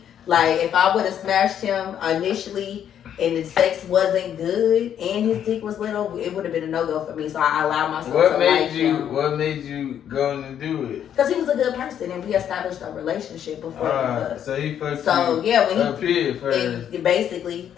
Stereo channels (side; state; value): right; quieter; 9.5 dB